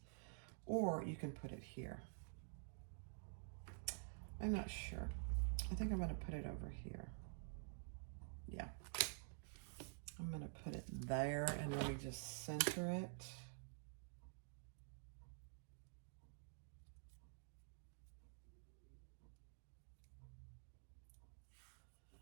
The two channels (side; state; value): left; silent; digital silence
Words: Or you can put it here. I'm not sure. I think I'm going to put it over here. Yeah. I'm going to put it there and let me just center it.